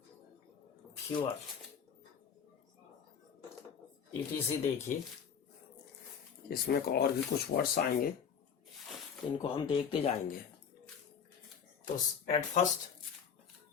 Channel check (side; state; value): right; quieter; 7.2 dB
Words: fewer, etc। देखिए, इसमें और भी कुछ वर्ड्स आएंगे, इनको हम देखते जाएंगे। तो एट फर्स्ट